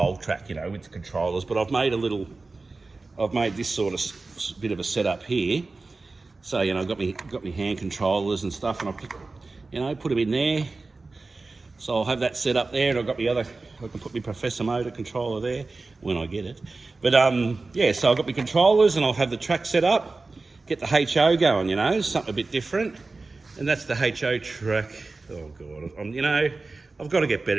track, you know, with the controllers. But I've made this sort of bit of a setup here. So, you know, I've got me hand controllers and stuff, and I'll put them in there. So I'll have that set up there, and I've got I can put my Professor Motor controller there when I get it. But yeah, so I've got my controllers, and I'll have the track set up, get the HO going, you know, something a bit different. And that's the HO track. Oh God, you know, I've got to get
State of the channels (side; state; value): left; quieter; 3.6 dB